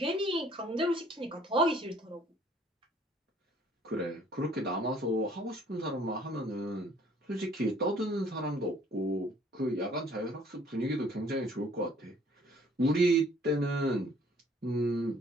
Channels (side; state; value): both; normal; correlation 0.58